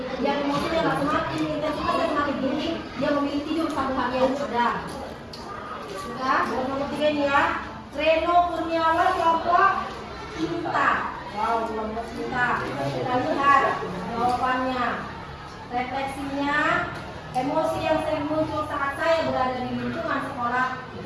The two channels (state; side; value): identical; both; correlation 1.00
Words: Dia emosinya nggak semakin intensitasnya semakin tinggi. Dia memilih tidur satu harian sudah. Sudah. Dan nomor 3 ini ya. Reno Kurniawan kelompok cinta. Wow, kelompok cinta. Kita lihat jawabannya. Refleksinya, emosi yang sering muncul saat saya berada di lingkungan sekolah